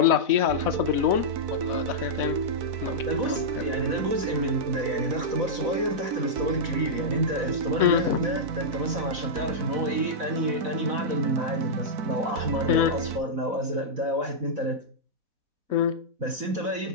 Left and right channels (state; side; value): late; left; 4.0 ms